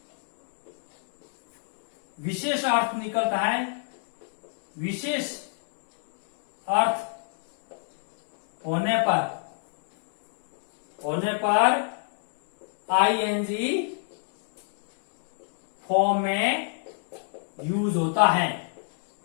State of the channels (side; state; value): right; silent; digital silence